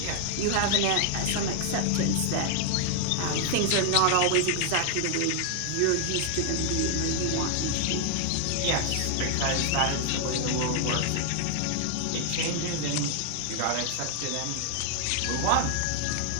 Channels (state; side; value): different; both; correlation 0.00